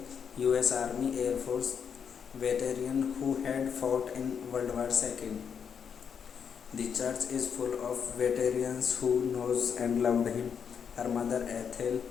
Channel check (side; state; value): right; quieter; 7.1 dB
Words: U.S. Army Air Force veteran who had fought in World War II. The church is full of veterans who knows and loved him. Her mother Ethel